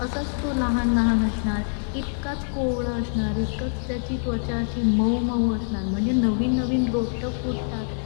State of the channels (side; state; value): right; silent; digital silence